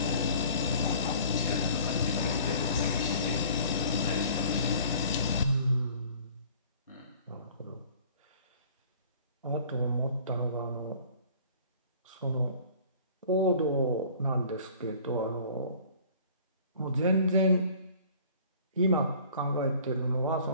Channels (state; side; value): inverted; both; correlation -0.50